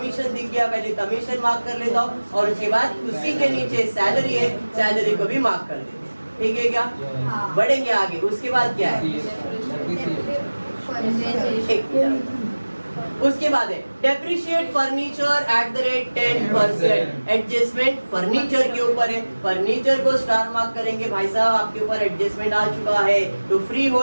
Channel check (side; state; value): both; inverted; correlation -1.00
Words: दिख गया, पहले कमीशन मार्क कर लेता हूँ और उसके बाद उसी के नीचे सैलरी है, सैलरी को भी मार्क कर लेते हैं। ठीक है क्या? बढ़ेंगे आगे। उसके बाद क्या है? उसके बाद है depreciate furniture at the rate 10%। Adjustment furniture के ऊपर है, फर्नीचर को स्टार मार्क करेंगे भाई साहब, आपके ऊपर एडजस्टमेंट आ चुका है तो फ्री